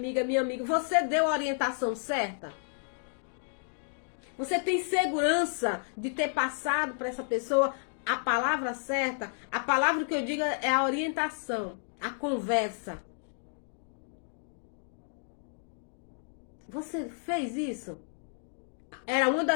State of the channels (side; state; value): right; silent; digital silence